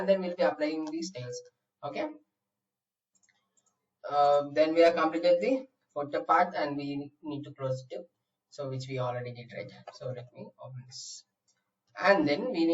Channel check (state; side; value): identical; both; correlation 1.00